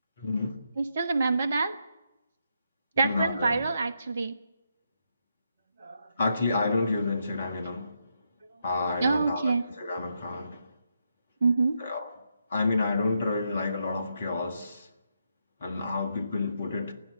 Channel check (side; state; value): both; inverted; correlation -0.80